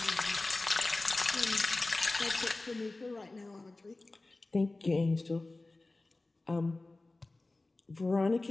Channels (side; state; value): right; quieter; 3.1 dB